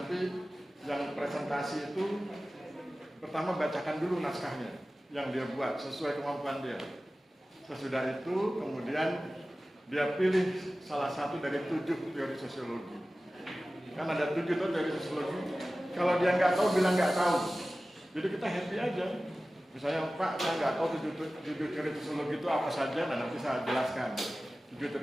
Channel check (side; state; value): both; normal; correlation 0.96